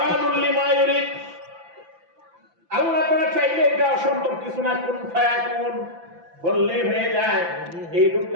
লিমা ইউরিদ। আল্লাহ তাআলা চাইলে এটা অসম্ভব কিছু না, কোন ফায়াকুন বললেই হয়ে যায়। এই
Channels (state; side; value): late; left; 5.9 ms